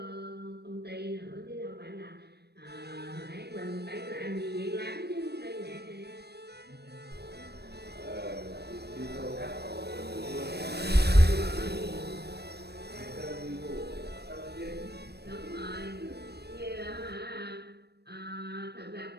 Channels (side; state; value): left; late; 0.47 ms